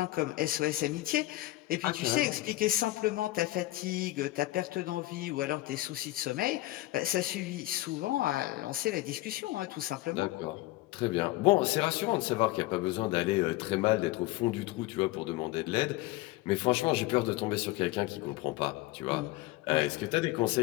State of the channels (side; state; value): right; quieter; 18.2 dB